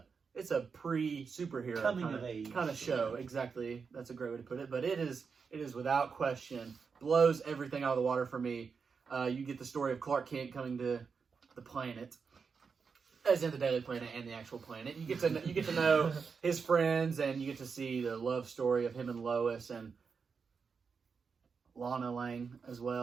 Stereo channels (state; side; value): quieter; left; 5.5 dB